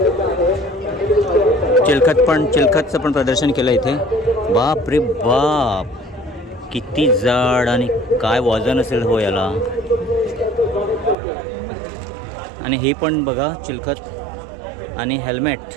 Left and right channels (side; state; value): left; drops out; at 11.2 s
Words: चिलखतचं पण प्रदर्शन केलं इथे. बाप रे बाप, किती जाड आणि काय वजन असेल हो याला. आणि हे पण बघा चिलखत आणि हेल्मेट,